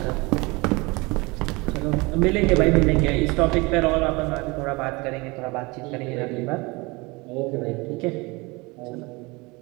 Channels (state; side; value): quieter; left; 25.2 dB